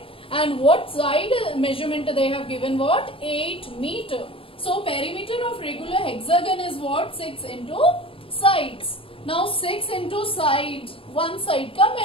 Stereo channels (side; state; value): right; late; 0.26 ms